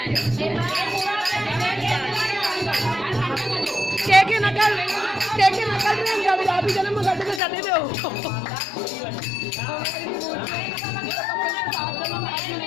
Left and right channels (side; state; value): right; drops out; at 7.4 s